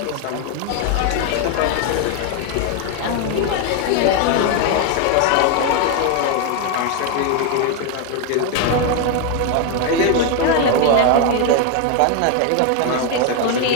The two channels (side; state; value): both; different; correlation 0.01